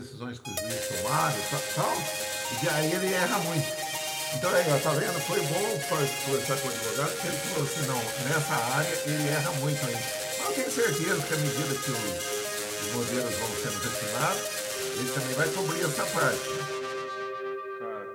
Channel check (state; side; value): identical; both; correlation 1.00